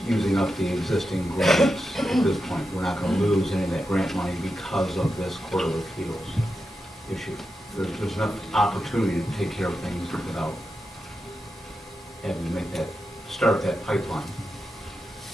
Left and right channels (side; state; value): both; normal; correlation 0.89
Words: using up the existing grants at this point. We're not gonna lose any of that grant money because of this Court of Appeals issue. There's enough opportunity to take care of things without having to start that pipeline.